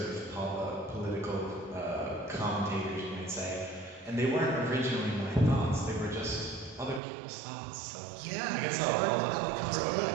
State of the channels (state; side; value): drops out; left; at 7.0 s